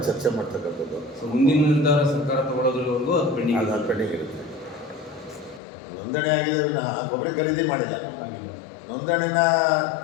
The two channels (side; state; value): right; drops out; at 5.6 s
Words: ಚರ್ಚೆ ಮಾಡ್ತಕ್ಕಂಥದ್ದು. ಮುಂದಿನ ನಿರ್ಧಾರ ಸರ್ಕಾರ ತಗೊಳ್ಳೋದ್ರವರೆಗೂ ಅದು ಪೆಂಡಿಂಗ್ ಇರುತ್ತೆ. ನೋಂದಣಿ ಆಗಿದೆ ವಿನಃ ಗೊಬ್ಬರ ಖರೀದಿ ಮಾಡಿಲ್ಲ. ನಾವು ನೋಂದಣಿನ